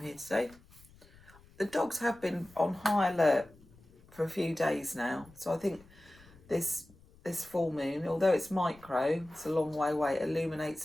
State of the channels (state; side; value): noise; left; rumble, 25 dB below the sound